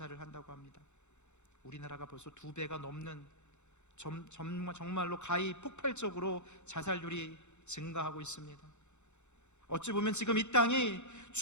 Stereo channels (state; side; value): late; right; 0.83 ms